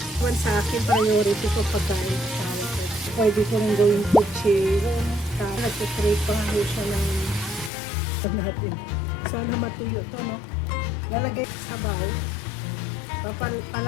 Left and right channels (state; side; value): drops out; right; at 7.7 s